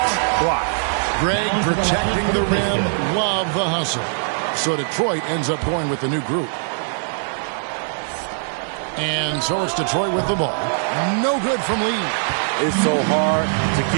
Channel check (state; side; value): silent; left; 59 dB below the other